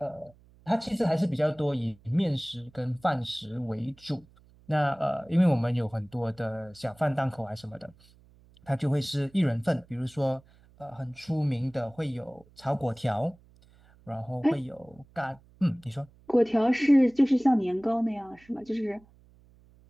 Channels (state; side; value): noise; right; hum, 28 dB below the sound